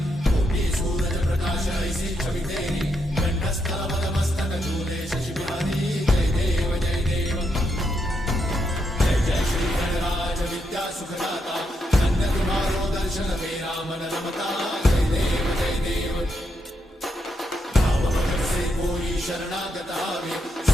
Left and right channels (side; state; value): both; normal; correlation 0.80